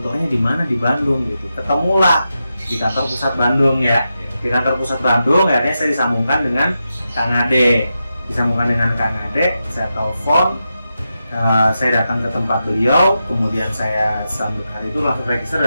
di mana di Bandung gitu. Ketemulah di kantor pusat Bandung ya. Di kantor pusat Bandung, akhirnya saya disambungkan dengan Kang Ade. Saya telepon, saya datang ke tempat beliau, kemudian saya hari itu langsung register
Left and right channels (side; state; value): both; inverted; correlation -0.88